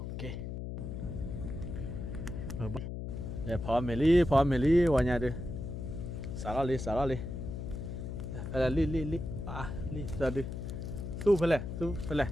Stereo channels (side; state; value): left; noise; hum, 6 dB below the sound